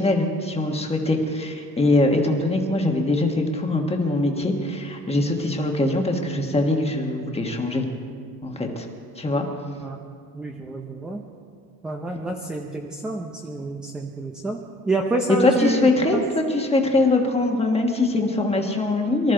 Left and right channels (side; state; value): both; normal; correlation 0.60